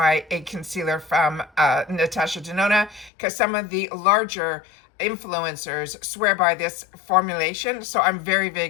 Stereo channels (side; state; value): right; drops out; at 3.1 s